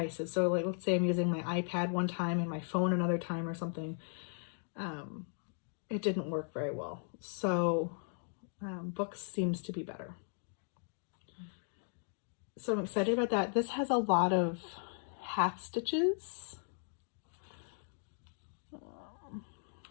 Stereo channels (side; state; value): right; silent; 53 dB below the other